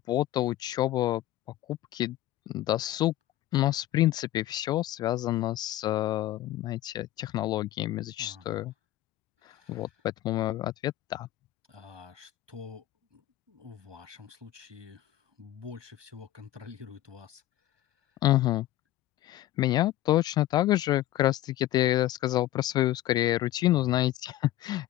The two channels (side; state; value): right; quieter; 14.6 dB